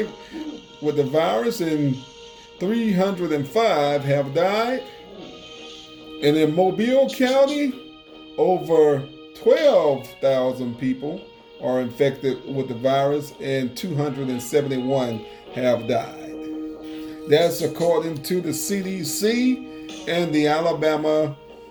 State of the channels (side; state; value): both; identical; correlation 1.00